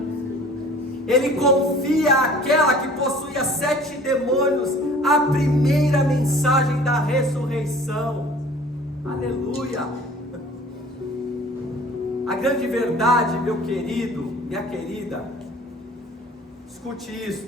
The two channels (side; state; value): both; normal; correlation 0.48